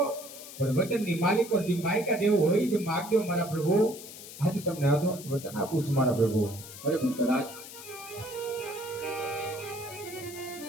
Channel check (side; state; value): left; noise; hiss, 14 dB below the sound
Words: પણ વચનની માલિકો જે માયકા જેવું હોય તે માંગજો મારા પ્રભુ. આજે તમને આધો વચન આપું છું મારા પ્રભુ. ભલે ભક્તરાજ,